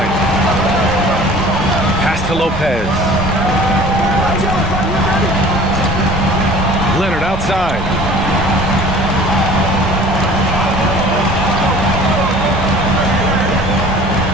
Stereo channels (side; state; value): both; normal; correlation 0.47